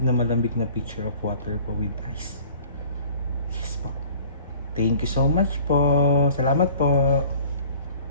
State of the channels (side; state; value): both; inverted; correlation -0.49